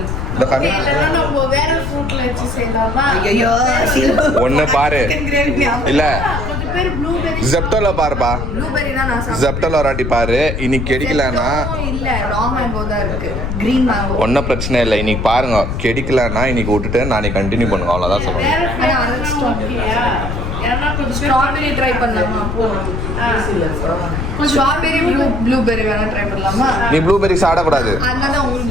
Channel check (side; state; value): left; noise; rumble, 3 dB below the sound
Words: ஒன்னு பாரு. இல்ல ஜெப்டோல பாருப்பா. ஜெப்டோல ஒரு வாட்டி பாரு. இன்னைக்கு கிடைக்கலன்னா ஒன்னும் பிரச்சனை இல்லை. இன்னைக்கு பாருங்க, கிடைக்கலன்னா இன்னைக்கு விட்டுட்டு நாளைக்கு கண்டினியூ பண்ணுங்க. அவ்வளவுதான் சொல்லுங்க. ஸ்ட்ராபெரி ட்ரை பண்ணலாமா? ஸ்ட்ராபெரி ப்ளூபெரி வேணா ட்ரை பண்ணலாமா? நீ ப்ளூபெரி சாப்பிடக்கூடாது. அதனால உங்களுக்கு